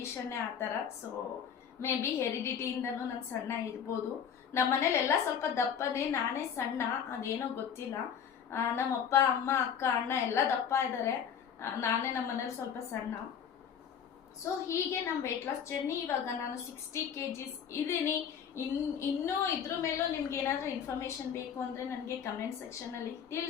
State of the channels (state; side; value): quieter; right; 7.9 dB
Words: ಆ ಥರ. ಸೊ ಮೇ ಬಿ ಹೆರಿಡಿಟಿಯಿಂದನೂ ನಾನು ಸಣ್ಣ ಇರ್ಬೋದು. ನಮ್ಮ ಮನೇಲೆಲ್ಲ ಸ್ವಲ್ಪ ದಪ್ಪನೇ, ನಾನೇ ಸಣ್ಣ, ಅದೇನೋ ಗೊತ್ತಿಲ್ಲ. ನಮ್ಮಪ್ಪ, ಅಮ್ಮ, ಅಕ್ಕ, ಅಣ್ಣ ಎಲ್ಲ ದಪ್ಪ ಇದ್ದಾರೆ, ನಾನೇ ನಮ್ಮ ಮನೇಲಿ ಸ್ವಲ್ಪ ಸಣ್ಣ. ಸೊ ಹೀಗೆ ನಮ್ಮ ವೆಯ್ಟ್ ಲಾಸ್ ಜರ್ನಿ. ಇವಾಗ ನಾನು 60 kgs ಇದ್ದೀನಿ. ಇನ್ನೂ ಇದ್ರ ಮೇಲೂ ನಿಮ್ಗೆ ಏನಾದರೂ ಇನ್ಫಾರ್ಮೇಶನ್ ಬೇಕು ಅಂದರೆ ನನಗೆ ಕಮೆಂಟ್ ಸೆಕ್ಷನಲ್ಲಿ